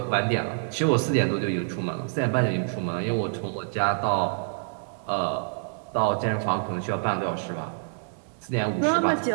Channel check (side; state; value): left; silent; 60 dB below the other